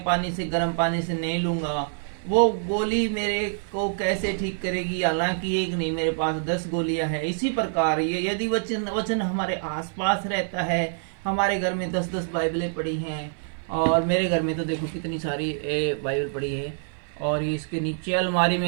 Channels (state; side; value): silent; left; 55 dB below the other